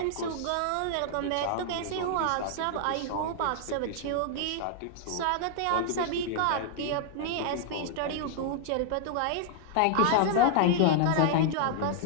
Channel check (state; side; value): different; both; correlation -0.01